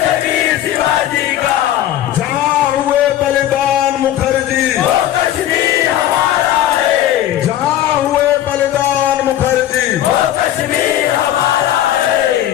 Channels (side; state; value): right; quieter; 12.3 dB